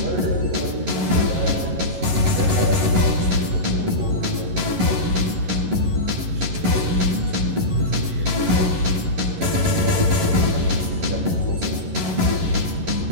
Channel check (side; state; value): left; late; 11 ms